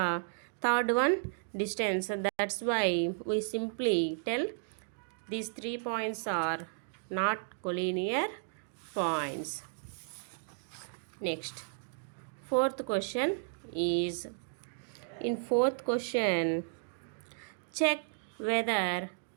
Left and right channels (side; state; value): left; silent; digital silence